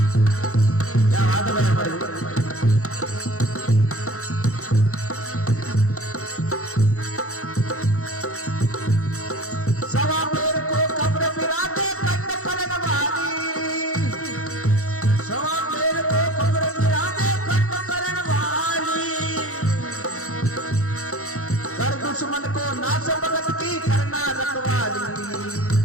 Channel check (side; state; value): right; late; 0.64 ms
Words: क्या बात है हमारी सवा पेड़ को कब्र बिराजे कंठ करन वाली सवा पेड़ को कब्र बिराजे दुश्मन को नाश भगत की करना रखवाली